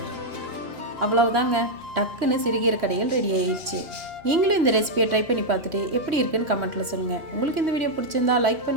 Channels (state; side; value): late; left; 3.1 ms